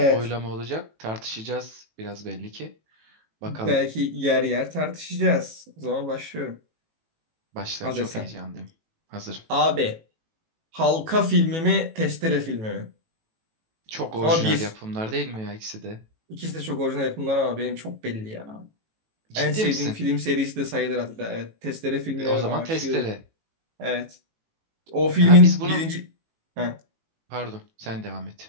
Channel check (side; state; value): left; late; 18 ms